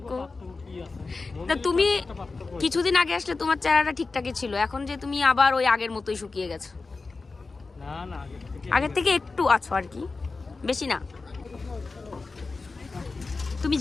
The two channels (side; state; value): right; quieter; 3.9 dB